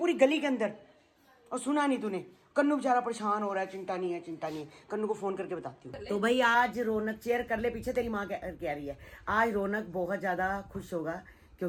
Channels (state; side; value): identical; both; correlation 1.00